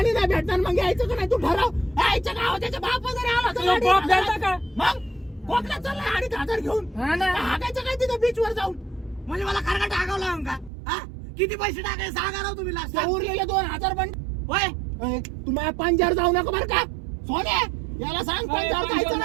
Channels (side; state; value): left; drops out; at 10.7 s